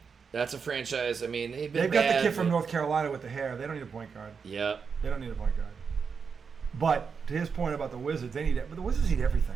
That's a franchise. I mean, they've been They've got bad, the kid from but- North Carolina with the hair. They don't need a point guard. Yeah. They don't need a point guard. But to his point about the Wizards, they need it. But the Wizards need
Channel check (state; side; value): quieter; left; 5.8 dB